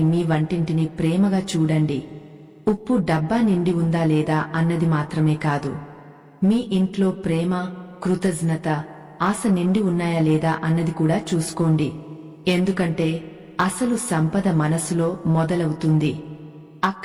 మీ వంటింటిని ప్రేమగా చూడండి. ఉప్పు డబ్బా నిండి ఉందా లేదా అన్నది మాత్రమే కాదు, మీ ఇంట్లో ప్రేమ, కృతజ్ఞత, ఆశ నిండి ఉన్నాయా లేదా అన్నది కూడా చూసుకోండి. ఎందుకంటే అసలు సంపద మనసులో మొదలవుతుంది.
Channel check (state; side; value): identical; both; correlation 1.00